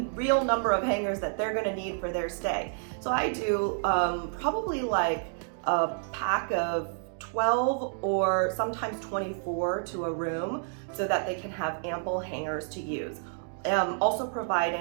real number of hangers that they're going to need for their stay. So I do probably like a pack of 12 or sometimes 24 to a room so that they can have ample hangers to use. Also provide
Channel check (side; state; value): left; silent; digital silence